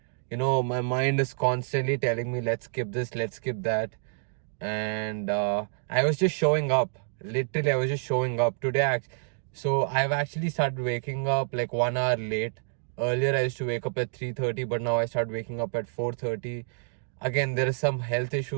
My mind is constantly telling me, let's skip this, let's skip that. And I was just showing up. Literally, I was just showing up today. So I've actually started waking up like 1 hour late. Earlier, I used to wake up at 3:30, but now I started waking up at 4:30. Again, there are some health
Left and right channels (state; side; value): silent; left; digital silence